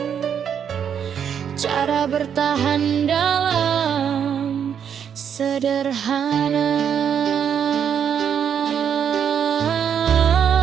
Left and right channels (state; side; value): quieter; left; 8.1 dB